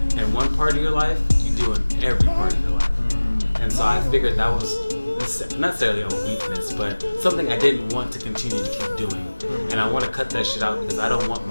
in one part of your life, you do in every part of your life. And so I figured that was not necessarily a weakness, but something I didn't want to continue to keep doing. And I want to cut that shit out because I don't want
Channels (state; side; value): inverted; both; correlation -1.00